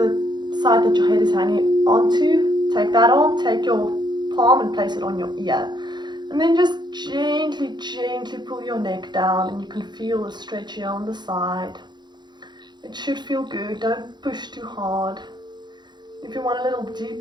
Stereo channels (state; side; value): late; left; 0.21 ms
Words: side that your head is hanging onto. Take that on. Take your palm and place it on your ear. And then just gently, gently pull your neck down, and you can feel the stretch here on the side. It should feel good. Don't push too hard. If you want a little